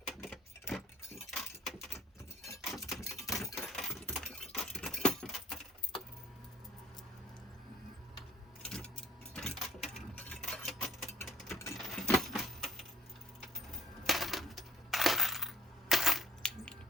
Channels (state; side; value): normal; both; correlation 0.59